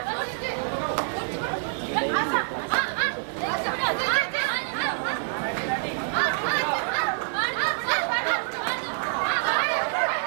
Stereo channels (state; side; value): silent; left; digital silence